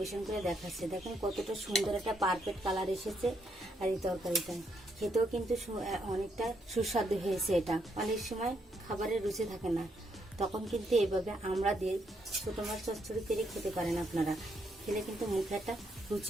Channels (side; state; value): both; normal; correlation 0.76